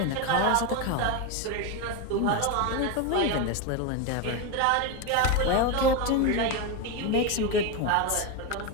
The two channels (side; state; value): both; different; correlation 0.03